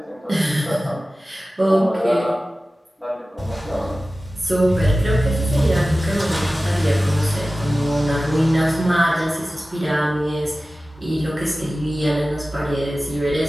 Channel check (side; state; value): both; normal; correlation 0.96